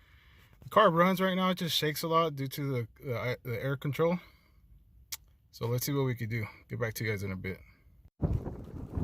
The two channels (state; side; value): identical; both; correlation 1.00